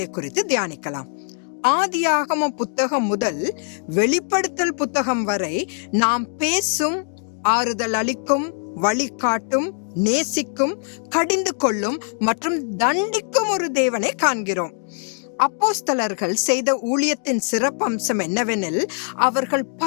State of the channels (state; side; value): silent; right; 64 dB below the other